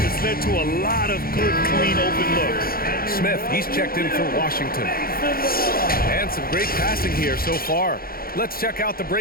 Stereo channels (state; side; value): late; right; 0.43 ms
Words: It's led to a lot of good, clean, open looks. Smith, he's checked in for Washington. And some great passing here so far. Let's check out the